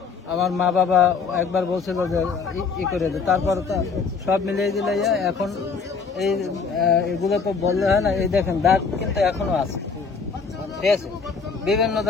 আমার মা বাবা একবার বলছিল যে ই করে দে, তারপর সব মিলিয়ে দিলে এখন এই এগুলো তো বললে হয় না, এই দেখেন দাগ কিন্তু এখনো আছে, ঠিক আছে? বিভিন্ন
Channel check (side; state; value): right; quieter; 5.2 dB